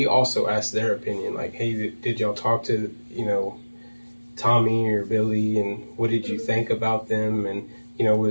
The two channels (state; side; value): inverted; both; correlation -1.00